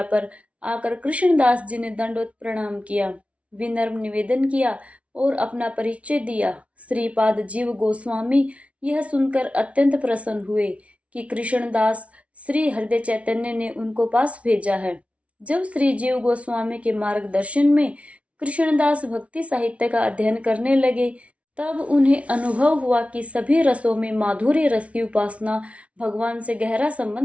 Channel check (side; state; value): left; late; 0.063 ms